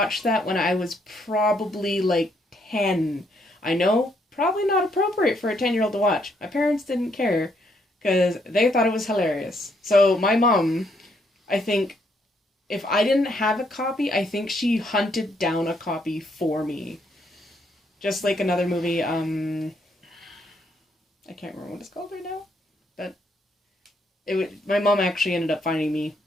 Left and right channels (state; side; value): normal; both; correlation 0.73